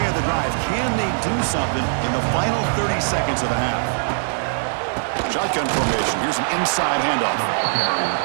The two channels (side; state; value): left; silent; 63 dB below the other